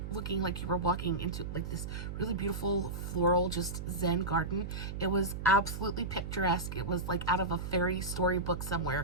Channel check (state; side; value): noise; right; hum, 6 dB below the sound